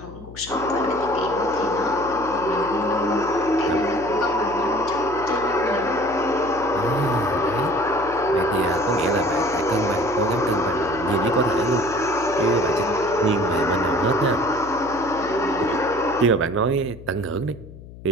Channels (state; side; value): noise; left; hum, 17 dB below the sound